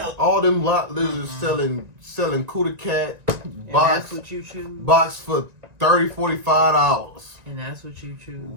All them lot lizards selling Cuda Cat box. That's what you choose. Box for $30-$45. And that's what you choose.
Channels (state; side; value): late; left; 1.9 ms